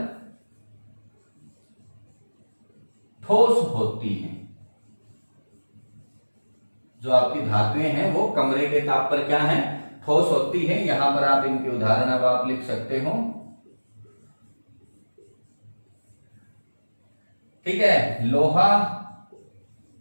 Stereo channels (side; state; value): both; inverted; correlation -1.00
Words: ठोस होती हैं। जो आपकी धातुएं हैं वो कमरे के ताप पर क्या है, ठोस होती है। यहां पर आप इनके उदाहरण अब आप लिख सकते हो, ठीक है। लोहा,